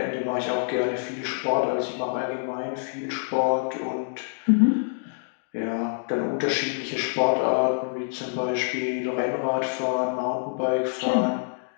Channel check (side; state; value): right; silent; digital silence